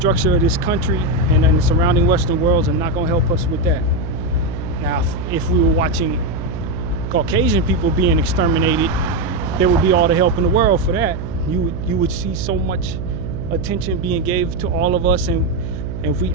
of this country and the surrounding Western worlds are not gonna help us with that. Now, if we were watching Caucasian people being exterminated, there would be all the help in the world for that. You would see so much attention being gave to all of us, and if we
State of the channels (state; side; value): noise; right; hum, 7 dB below the sound